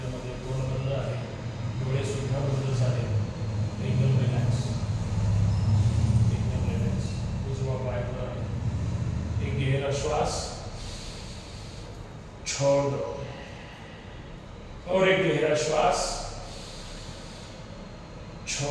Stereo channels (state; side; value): identical; both; correlation 1.00